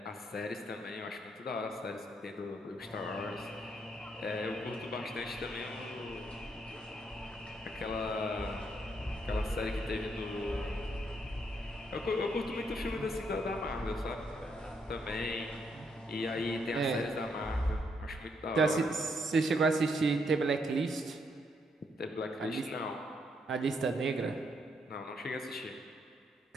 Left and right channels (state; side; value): normal; both; correlation 0.75